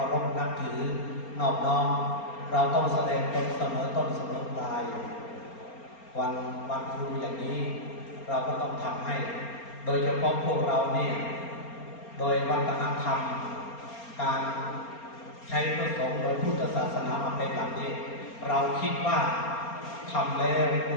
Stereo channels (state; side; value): late; right; 4.3 ms